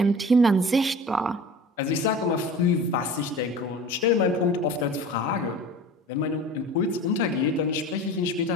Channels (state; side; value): normal; both; correlation 0.38